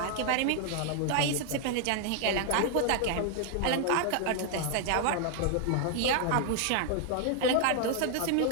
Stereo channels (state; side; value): different; both; correlation 0.00